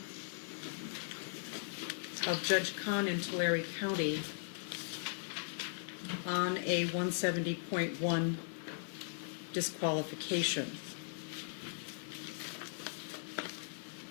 of Judge Kahn in Tulare County on a 170.1 disqualification.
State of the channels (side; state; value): right; silent; digital silence